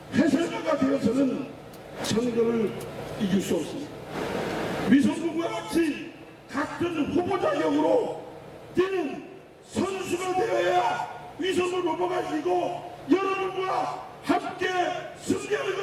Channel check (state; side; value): identical; both; correlation 1.00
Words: 해설가가 되어서는 선거를 이길 수 없습니다. 위성원과 같이 같은 후보 자격으로 뛰는 선수가 되어야 위성원 후보가 이기고 여러분과 함께 승리하는